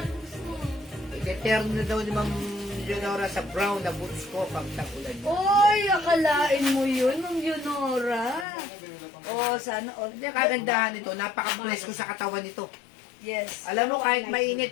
gusto mo. Iteterno na daw ni Ma'am Leonora sa brown na boots ko pag tagulan. Oy, akalain mo yun, Ma'am Leonora. Oh, sana all. Hindi, kagandahan nito. Napaka-bless ko sa katawan nito. Yes. Alam mo, kahit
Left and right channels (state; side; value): drops out; right; at 8.5 s